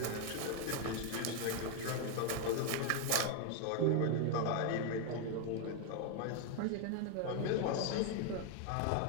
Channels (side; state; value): both; different; correlation 0.00